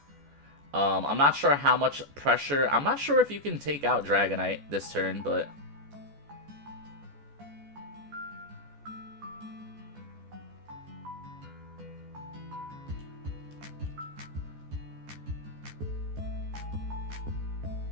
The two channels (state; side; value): late; left; 14 ms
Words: I'm not sure how much pressure... I'm not sure if you can take out Dragonite this turn, but...